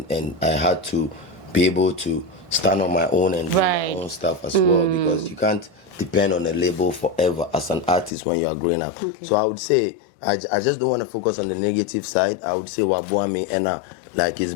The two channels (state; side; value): drops out; right; at 8.1 s